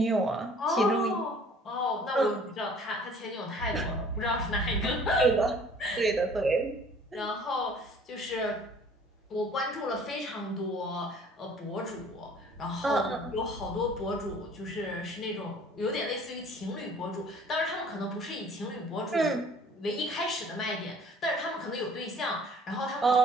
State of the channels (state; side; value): normal; both; correlation 0.52